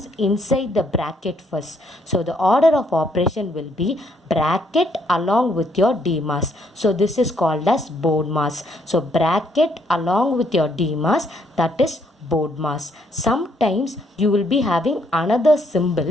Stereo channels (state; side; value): normal; both; correlation 0.70